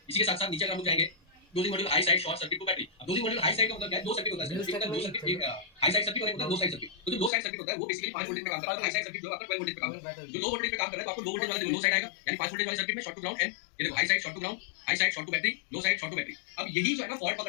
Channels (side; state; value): right; drops out; at 7.3 s